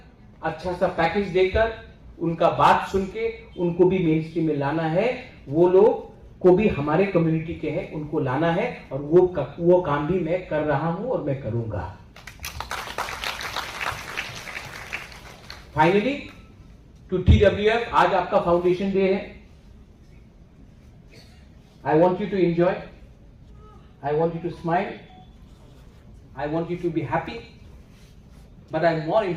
अच्छा सा पैकेज देकर, उनका बात सुन के उनको भी मेन स्ट्रीम में लाना है। वो लोग को भी हमारे कम्युनिटी के हैं, उनको लाना है, और वो काम भी मैं कर रहा हूं और मैं करूंगा। फाइनली टू TWF, आज आपका फाउंडेशन डे है। I want you to enjoy, I want you to smile, I want you to be happy, but I more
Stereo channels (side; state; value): both; identical; correlation 1.00